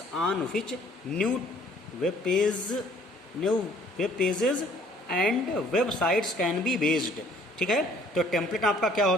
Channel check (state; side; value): normal; both; correlation 0.58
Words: on which new web pages and websites can be based, ठीक है। तो टेम्पलेट आपका क्या